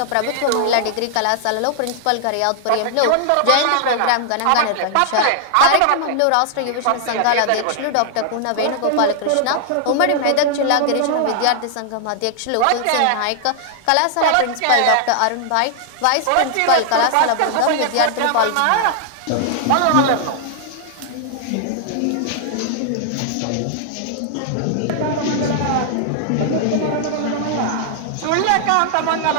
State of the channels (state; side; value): different; both; correlation -0.01